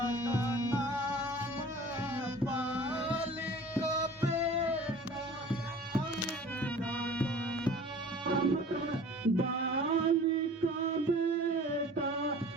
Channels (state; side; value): normal; both; correlation 0.45